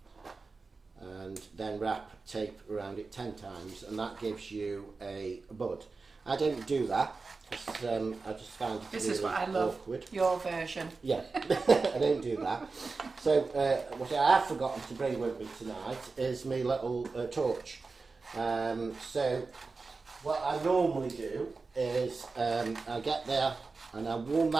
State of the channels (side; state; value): left; quieter; 4.1 dB